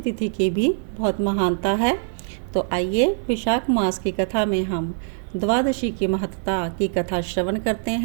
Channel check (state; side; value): silent; left; 60 dB below the other